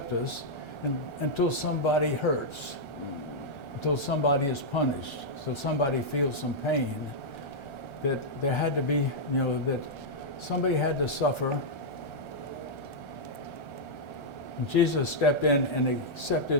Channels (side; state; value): right; late; 1.3 ms